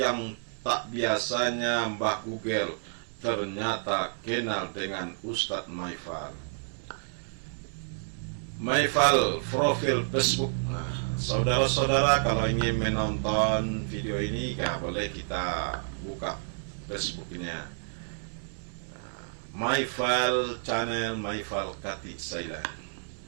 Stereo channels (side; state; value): left; silent; digital silence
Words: tak biasanya Mbah Google ternyata kenal dengan Ustadz Maifal. Maifal profil Facebook. Nah, saudara-saudara kalau ingin menonton video ini, ya boleh kita buka Facebooknya. Nah, Maifal Channel, Maifal Kati Sailan.